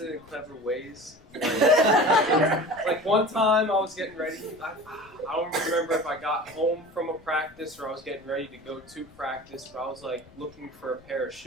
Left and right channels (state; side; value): noise; left; rumble, 26 dB below the sound